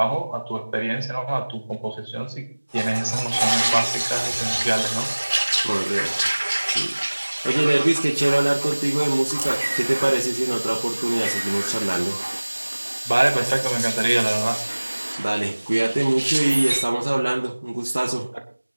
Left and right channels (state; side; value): inverted; both; correlation -1.00